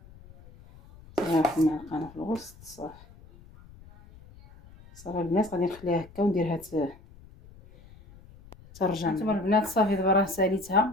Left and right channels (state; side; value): noise; left; rumble, 22 dB below the sound